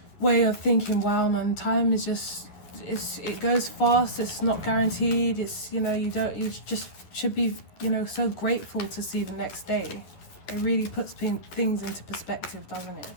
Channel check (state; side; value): late; right; 11 ms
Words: way of thinking, wow man, time is just, it goes fast, it's not guaranteed, it's, you know, you just should be, you know, so grateful to see the next day. It really puts things into perspective, doesn't it?